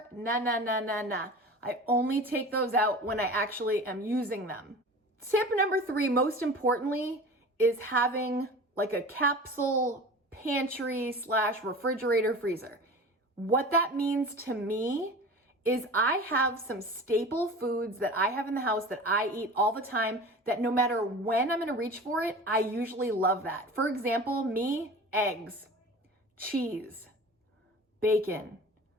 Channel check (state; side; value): normal; both; correlation 0.37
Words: Nah. I only take those out when I actually am using them. Tip number 3, most importantly, is having like a capsule pantry / refrigerator freezer. What that means to me is I have some staple foods that I have in the house that I eat all the time that no matter when I'm gonna reach for it, I usually love that. For example, me, eggs, cheese, bacon,